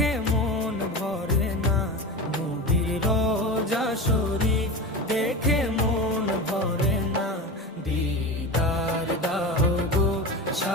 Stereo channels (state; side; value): normal; both; correlation 0.26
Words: মন ভরে না, নবীর রোজা শরীফ দেখে মন ভরে না। দিদার দাও গো